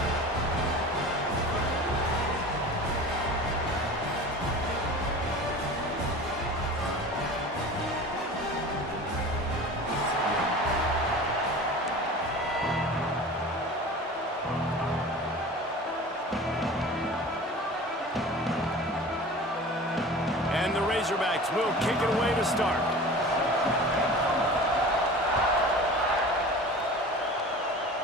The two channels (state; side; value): normal; both; correlation 0.38